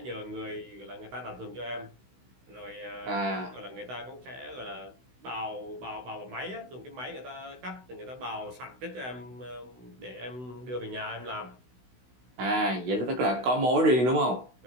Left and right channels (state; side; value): late; left; 16 ms